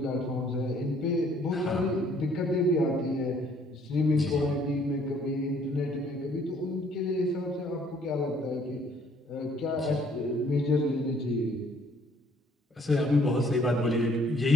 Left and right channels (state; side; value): normal; both; correlation 0.62